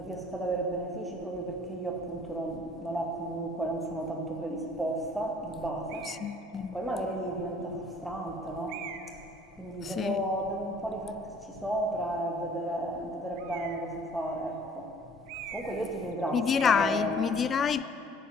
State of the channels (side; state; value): both; normal; correlation 0.54